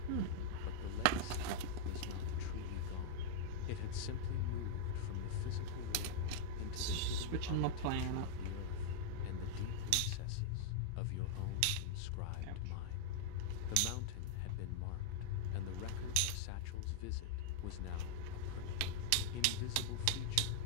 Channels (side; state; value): both; different; correlation -0.01